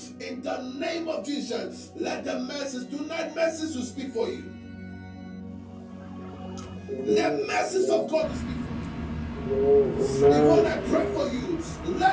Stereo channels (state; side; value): identical; both; correlation 1.00